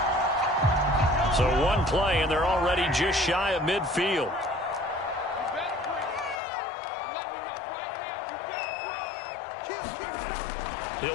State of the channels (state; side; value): drops out; right; at 6.4 s